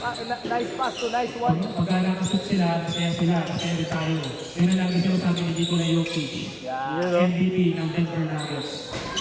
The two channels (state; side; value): identical; both; correlation 1.00